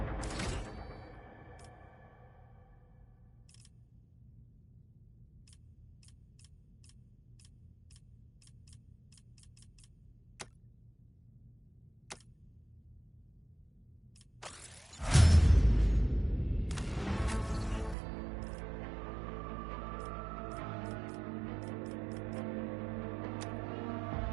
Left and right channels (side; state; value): left; drops out; at 17.9 s